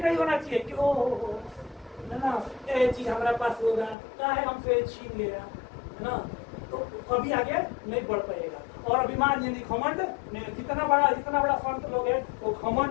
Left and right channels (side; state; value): right; drops out; at 4.0 s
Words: होना चाहिए कि ओ है ना ये चीज हमारे पास होगा, क्या है हमसे छीन लिया, है ना, तो कभी आगे नहीं बढ़ पाएगा। और अभिमान यानी घमंड नहीं, जितना बड़ा संत लोग है वो घमंड